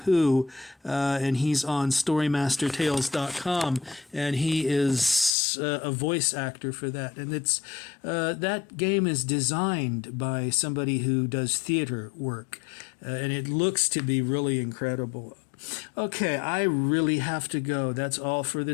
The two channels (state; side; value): drops out; right; at 5.4 s